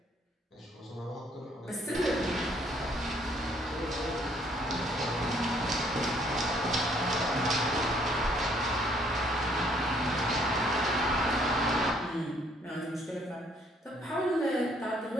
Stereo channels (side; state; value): both; normal; correlation 0.64